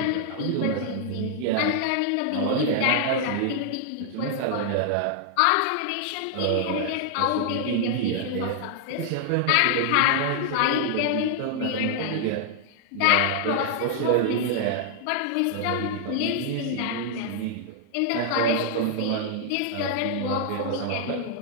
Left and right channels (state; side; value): different; both; correlation -0.01